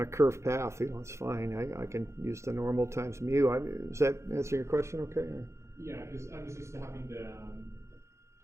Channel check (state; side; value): late; left; 0.14 ms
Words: a curved path, it's fine. I can use the normal times mu. Does that answer your question okay? Or? Yeah, because I'm just used to having the...